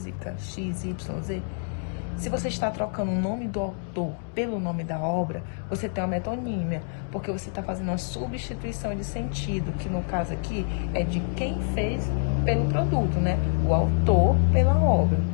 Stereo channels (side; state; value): right; silent; digital silence